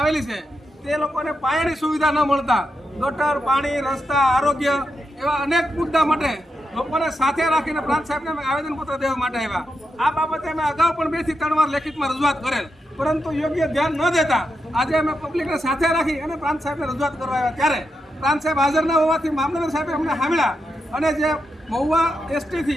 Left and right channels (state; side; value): normal; both; correlation 0.85